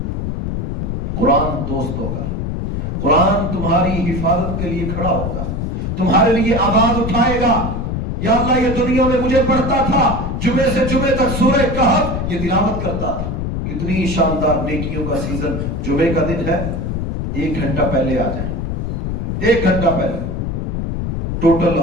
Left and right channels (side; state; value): left; noise; rumble, 2 dB below the sound